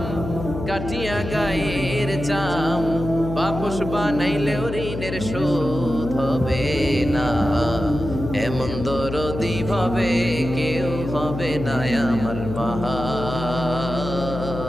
কাটিয়া গায়ের চাম, বাপস বানাইলেও ঋণের শোধ হবে না। এমন দরদি ভাবে কেউ হবে না আমার মা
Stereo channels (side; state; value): left; noise; hum, 7 dB below the sound